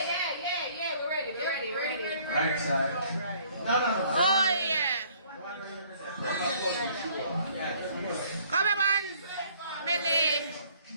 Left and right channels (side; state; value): both; inverted; correlation -0.59